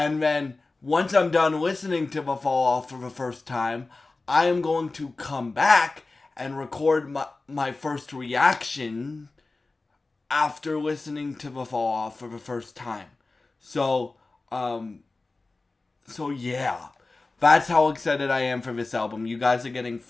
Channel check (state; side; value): quieter; right; 3.4 dB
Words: then once I'm done listening to the Fall Off for the first time, I am going to come back and record my first reaction after listening to the Fall Off for the first time. So yeah. That's how excited I am for this album. You guys are getting